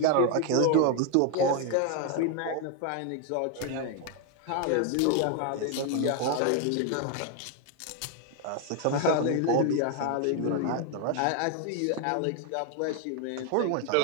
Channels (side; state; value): both; different; correlation 0.01